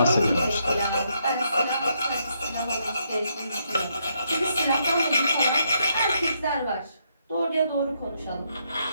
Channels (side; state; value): both; inverted; correlation -0.76